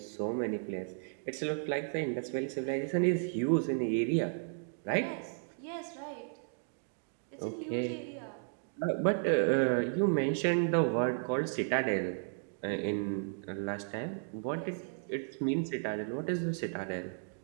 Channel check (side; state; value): left; silent; digital silence